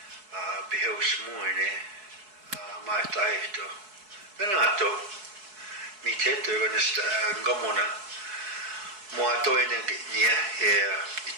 behausmoine maitaihto benato miteto ganesta ngamona moato ene nia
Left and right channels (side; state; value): left; late; 4.7 ms